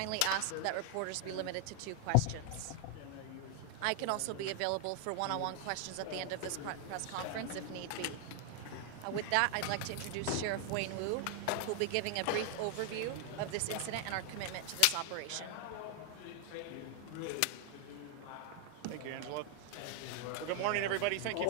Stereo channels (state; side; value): different; both; correlation 0.00